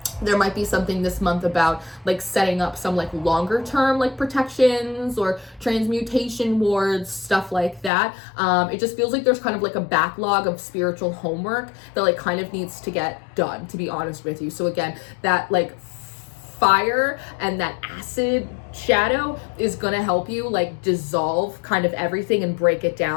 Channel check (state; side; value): drops out; right; at 7.9 s